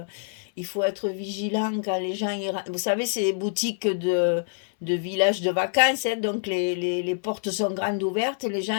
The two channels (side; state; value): right; silent; 61 dB below the other